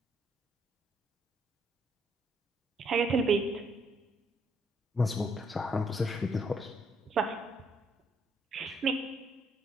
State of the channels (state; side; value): normal; both; correlation 0.71